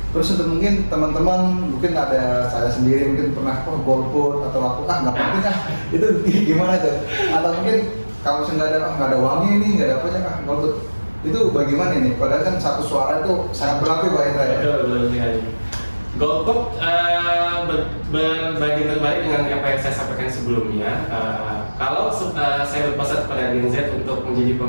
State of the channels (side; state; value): both; inverted; correlation -1.00